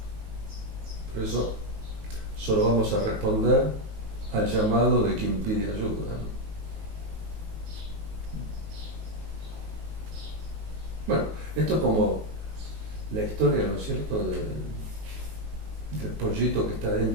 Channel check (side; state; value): left; late; 19 ms